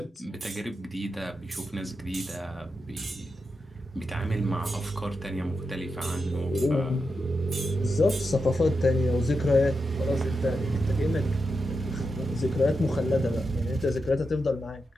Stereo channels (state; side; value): normal; both; correlation 0.87